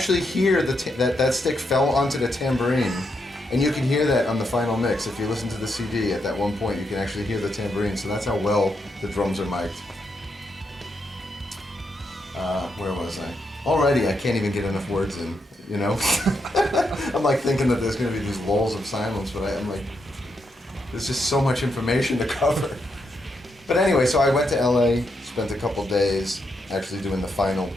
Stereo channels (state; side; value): normal; both; correlation 0.81